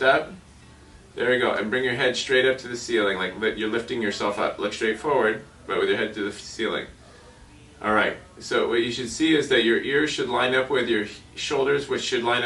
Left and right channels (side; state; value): both; identical; correlation 1.00